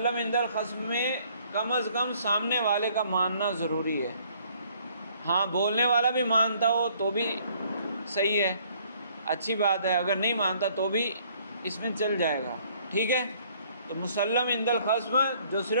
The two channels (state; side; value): inverted; both; correlation -0.61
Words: عند الخصم میں کم از کم سامنے والے کا ماننا ضروری ہے۔ ہاں، بولنے والا بھی مانتا ہو تو بھی صحیح ہے، اچھی بات ہے، اگر نہیں مانتا تو بھی اس میں چل جائے گا، ٹھیک ہے۔ تو مسلم عند الخصم جو